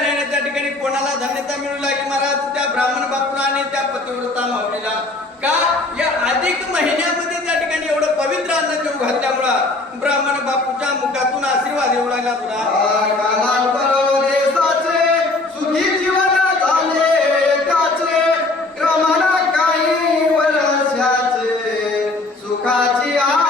नाही त्या ठिकाणी कोणाला धन्यता मिळू लागली महाराज त्या ब्राह्मण बापूला आणि त्या पतिव्रता माऊलीला. का या अधिक महिन्यामध्ये त्या ठिकाणी एवढं पवित्र अन्न जेव घातल्यामुळं ब्राह्मण बापूच्या मुखातून आशीर्वाद येऊ लागला तुला. देशाचे सुखी जीवन झाले त्याचे क्रमाला काही वर्षाचे सुखाची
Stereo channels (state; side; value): quieter; right; 3.1 dB